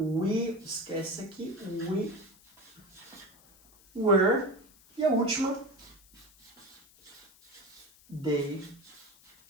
esquece aqui, we were. E a última, they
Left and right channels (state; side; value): noise; left; hiss, 26 dB below the sound